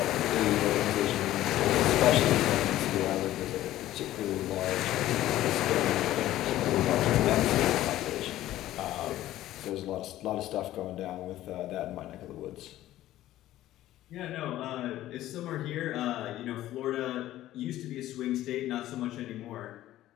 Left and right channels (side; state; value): right; quieter; 14.3 dB